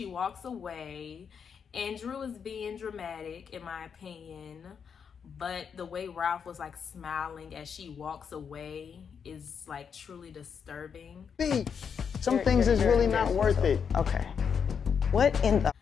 walks away, and Drew is being dramatic, in my opinion. But the way Ralph was like smiling as she walks away is like truly disturbing. Some things is really not worth it. Okay. What in the?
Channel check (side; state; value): right; quieter; 6.8 dB